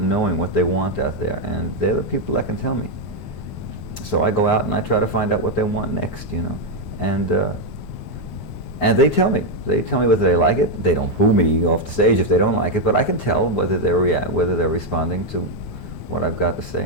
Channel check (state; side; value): late; right; 9.5 ms